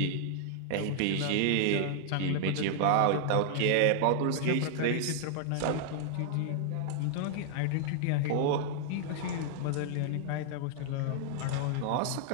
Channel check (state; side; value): different; both; correlation -0.01